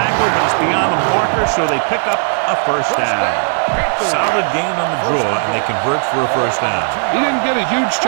but it's beyond the marker, so they pick up a first down. Solid gain on the draw, and they convert for a first down. He didn't get a huge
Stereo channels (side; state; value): left; silent; digital silence